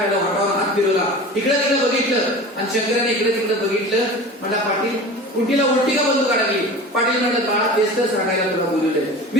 वाटावर हात फिरवला, इकडे तिकडे बघितलं आणि शंकराने इकडे तिकडे बघितलं. म्हणला, पाटील कुंटीला उलटी का बंदू काढली. पाटील म्हणलं, बाळा तेच तर सांगायला तुला बोलवलंय.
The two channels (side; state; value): both; normal; correlation 0.36